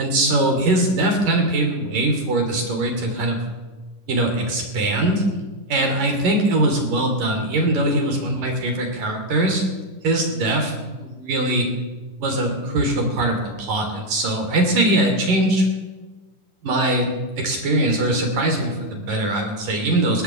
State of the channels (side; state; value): left; late; 11 ms